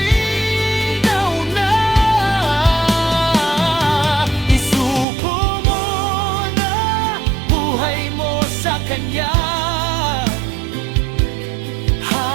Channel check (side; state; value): left; drops out; at 5.1 s